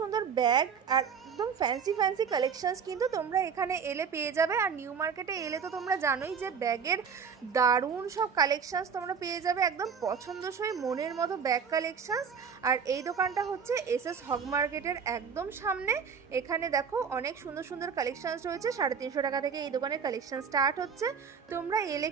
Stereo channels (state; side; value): quieter; left; 6.5 dB